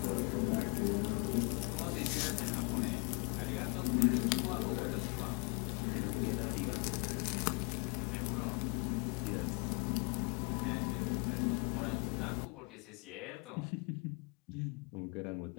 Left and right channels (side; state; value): right; quieter; 32.2 dB